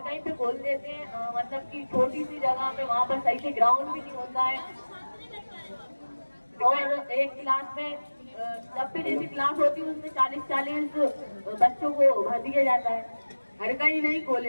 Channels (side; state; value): both; inverted; correlation -1.00